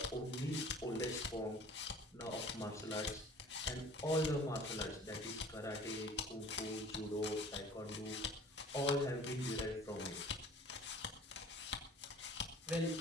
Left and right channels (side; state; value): both; normal; correlation 0.47